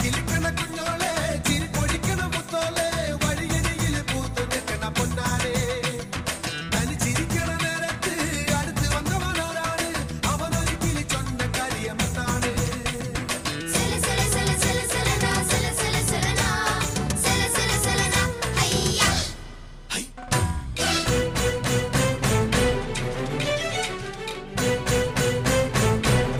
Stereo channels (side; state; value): both; identical; correlation 1.00